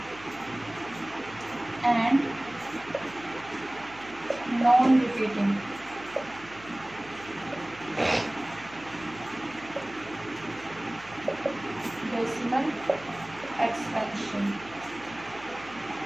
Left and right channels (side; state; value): right; noise; hum, 19 dB below the sound